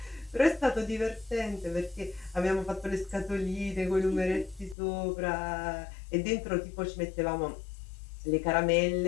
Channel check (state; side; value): drops out; right; at 4.8 s